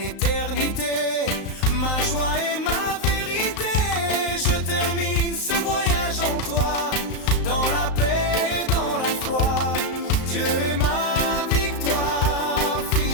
ma joie et ma vérité. Je termine ce voyage en toi,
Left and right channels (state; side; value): late; right; 35 ms